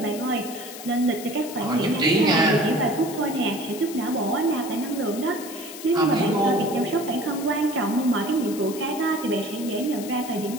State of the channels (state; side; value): noise; left; hiss, 13 dB below the sound